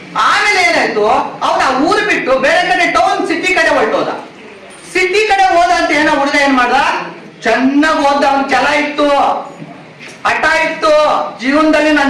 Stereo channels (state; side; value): identical; both; correlation 1.00